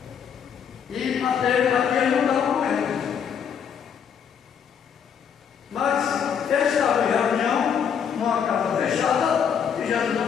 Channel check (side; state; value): right; quieter; 7.6 dB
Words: E Mateus aqui ele não estava com eles. Mas eles estavam em reunião, numa casa fechada, e Jesus